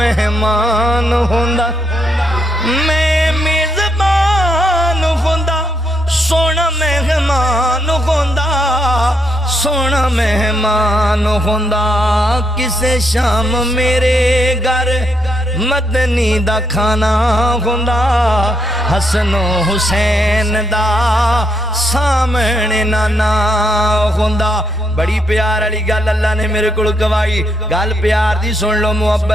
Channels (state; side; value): normal; both; correlation 0.78